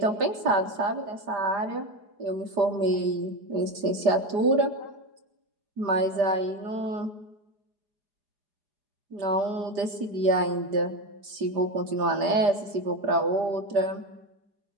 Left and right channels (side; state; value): left; late; 4.8 ms